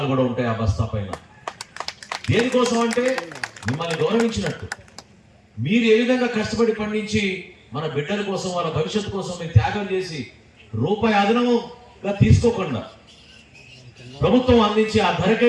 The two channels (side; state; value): both; identical; correlation 1.00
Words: కూడా ఉంటాయి ఆ బస్తా పైన. దేనికోసం అంటే మిమ్మల్ని గౌరవించినట్టు. మీరు ఏ విధంగా కష్టపడి పండించి మన బిడ్డల కోసం, వాళ్ళ భవిష్యత్తు కోసం మీరు త్యాగం చేసి రూపాయి అదనంగా తీసుకోకుండా ప్రభుత్వం అందించి ఆ ధరకే